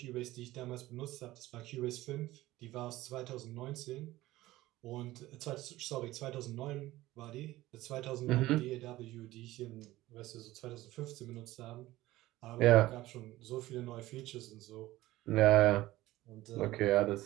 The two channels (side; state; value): left; quieter; 17.1 dB